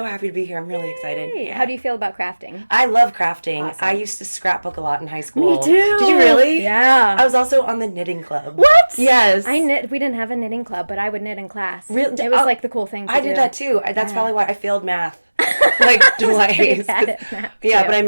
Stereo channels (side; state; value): both; inverted; correlation -1.00